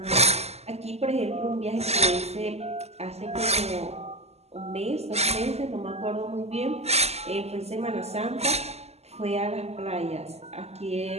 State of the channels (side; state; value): left; late; 0.30 ms